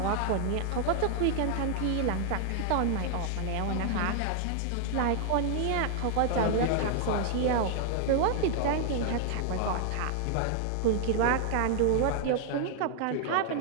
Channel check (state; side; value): different; both; correlation 0.00